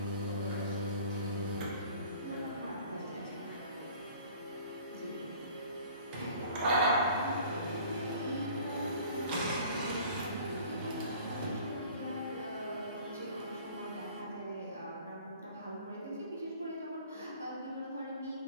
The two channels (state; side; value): inverted; both; correlation -0.49